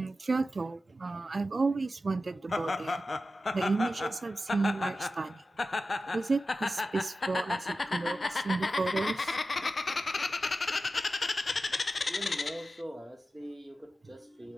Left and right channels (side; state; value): both; normal; correlation 0.93